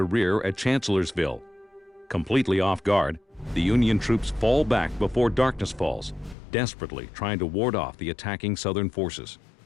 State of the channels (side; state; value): right; drops out; at 6.4 s